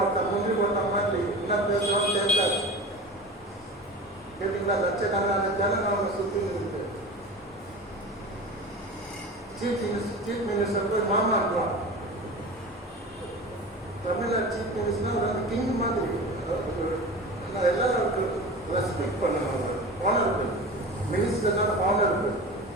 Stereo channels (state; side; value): normal; both; correlation 0.33